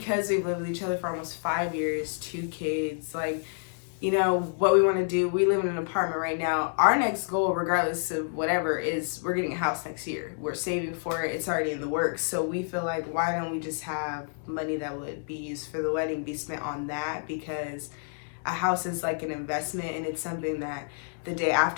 we've lived with each other for almost 5 years, 2 kids, like, you know, what we want to do, we live in an apartment right now. Our next goal, regardless of whatever, is we're getting a house next year. We're saving for it. It's already in the works. So we feel like, why don't we just have money that would be used for the wedding be spent on that? Because a house is like an investment, and it's something that the day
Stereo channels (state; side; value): silent; right; digital silence